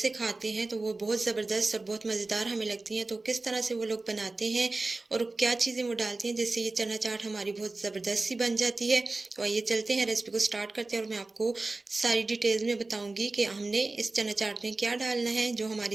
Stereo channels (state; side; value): quieter; left; 3.3 dB